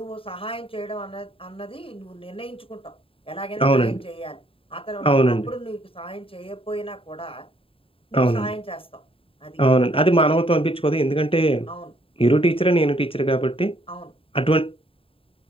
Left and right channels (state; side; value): late; right; 0.27 ms